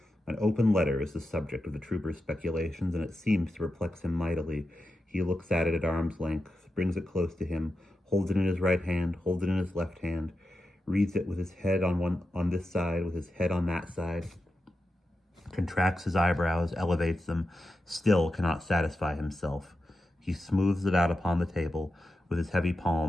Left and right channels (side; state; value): both; normal; correlation 0.89